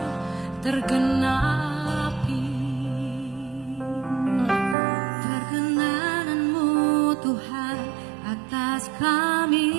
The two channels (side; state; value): left; drops out; at 4.8 s